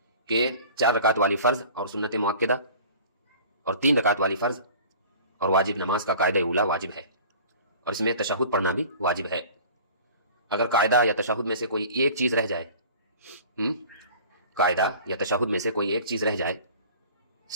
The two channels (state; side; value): inverted; both; correlation -0.45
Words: کہ 4 رکعت والی فرض اور سنت مؤکدہ اور 3 رکعت والی فرض اور واجب نماز کا قاعدہ اولا واجب ہے، اور اس میں تشہد پڑھنا بھی واجب ہے۔ اگر قاعدہ یا تشہد میں سے کوئی ایک چیز رہ جائے، قاعدہ یا تشہد میں سے کوئی ایک چیز رہ جائے،